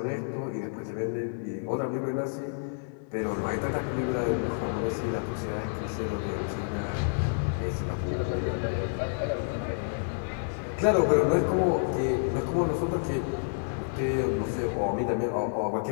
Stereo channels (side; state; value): right; silent; 56 dB below the other